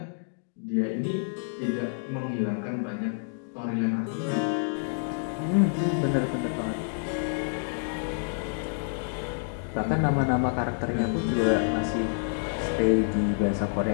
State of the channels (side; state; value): right; silent; digital silence